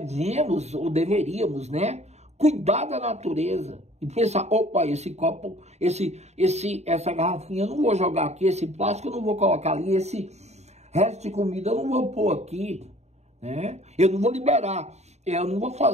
ou deveríamos, né, cuidar da natureza. E pensar, opa, esse copo, essa garrafinha eu não vou jogar aqui, esse plástico eu não vou colocar ali, esse resto de comida eu não vou pôr aqui, né? Eu não vou liberar. Eu não vou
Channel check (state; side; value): late; left; 0.32 ms